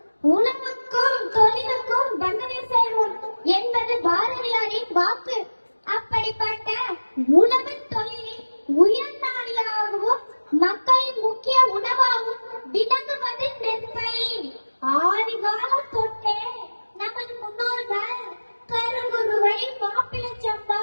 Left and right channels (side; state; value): both; inverted; correlation -1.00